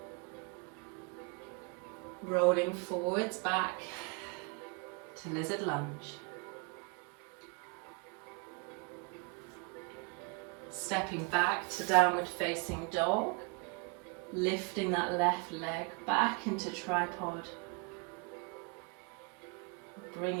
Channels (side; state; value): left; quieter; 34.6 dB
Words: Rolling forwards back to lizard lunge. Stepping back to downward facing dog. Lifting that left leg back into tripod.